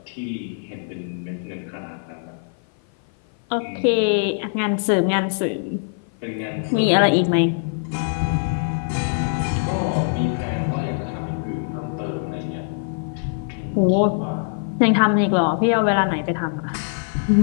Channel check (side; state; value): right; silent; 56 dB below the other